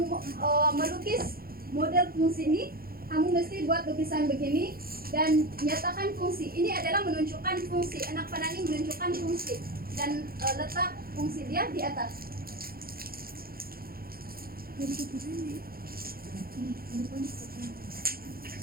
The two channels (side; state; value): left; late; 0.43 ms